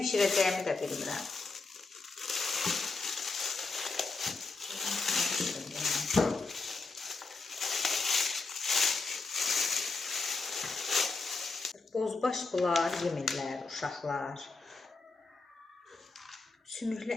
də bilmirəm. Bozbaş bunlar yemirlər, uşaqlar.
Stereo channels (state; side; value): quieter; right; 3.9 dB